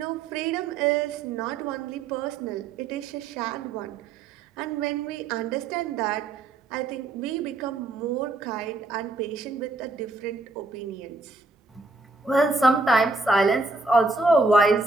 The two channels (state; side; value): quieter; left; 3.4 dB